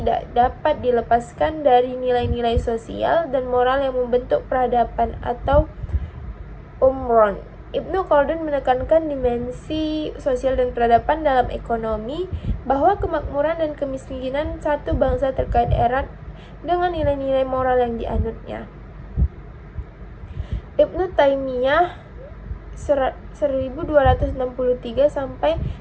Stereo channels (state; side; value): identical; both; correlation 1.00